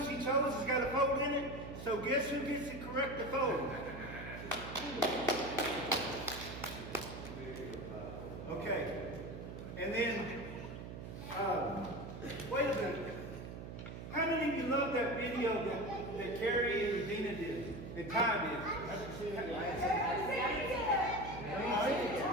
chose has got a fold in it. So guess who gets to correct the fold? Okay. And then, wait a minute. How many of you love that video that Carrie and Regina did and Ty did?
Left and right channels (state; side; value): noise; right; hum, 9 dB below the sound